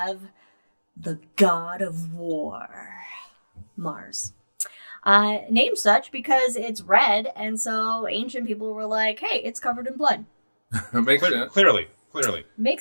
the god of war, Mars. Named such because it's red, and so ancient people were like, hey, it's covered in blood. Makes sense. Clearly.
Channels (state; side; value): inverted; both; correlation -1.00